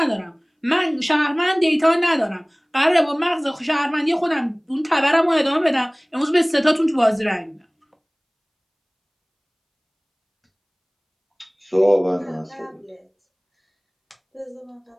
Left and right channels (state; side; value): identical; both; correlation 1.00